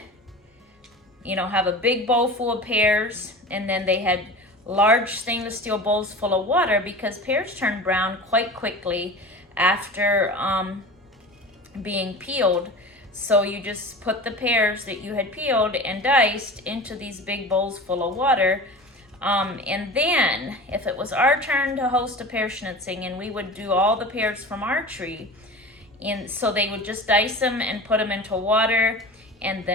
have a big bowl full of pears, and then they had large stainless steel bowls full of water because pears turn brown quite quickly after being peeled. So you just put the pears that you had peeled and diced into these big bowls full of water. And then if it was our turn to host a pear schnitzing, and we would do all the pears from our tree, And so they would just dice them and put them into water. And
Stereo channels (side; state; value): both; normal; correlation 0.34